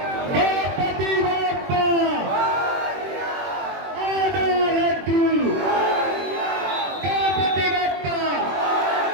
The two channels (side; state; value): left; late; 21 ms